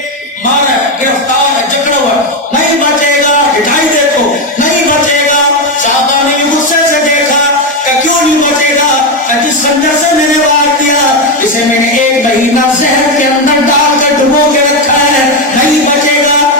مارا گرفتار جکڑا ہوا نہیں بچے گا ہٹائی دیکھو نہیں بچے گا صحابہ نے بھی غصے سے دیکھا کہ کیوں نہیں بچے گا کہ جس خنجر سے میں نے وار دیا اسے میں نے 1 مہینہ زہر کے اندر ڈال کر ڈبو کے رکھا ہے نہیں بچے گا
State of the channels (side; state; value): both; normal; correlation 0.09